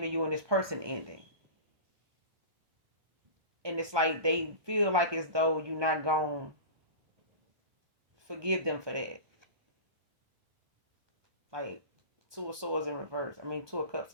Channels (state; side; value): late; left; 1.2 ms